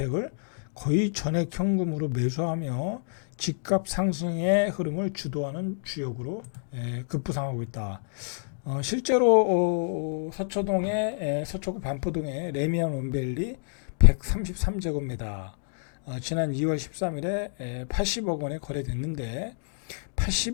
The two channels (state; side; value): silent; right; digital silence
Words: 거의 전액 현금으로 매수하며 집값 상승의 흐름을 주도하는 주역으로 급부상하고 있다. 실제로 서초구 반포동의 레미안 원베일리 133제곱미터 지난 2월 13일에 80억 원에 거래됐는데